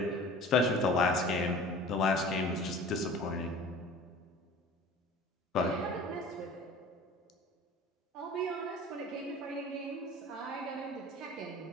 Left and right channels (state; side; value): normal; both; correlation 0.42